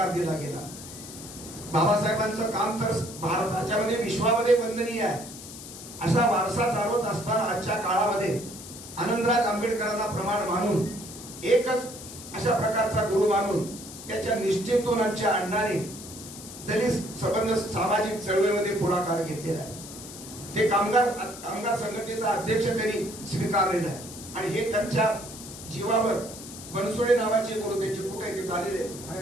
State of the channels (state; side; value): noise; left; hiss, 13 dB below the sound